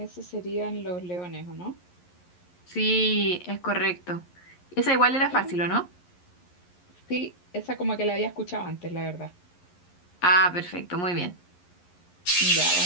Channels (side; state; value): right; late; 11 ms